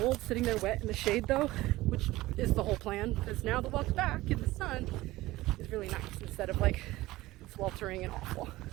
sitting there wet in the shade though, which is the whole plan, because now the walk back in the sun is really nice instead of like sweltering and awful.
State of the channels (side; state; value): left; quieter; 18.1 dB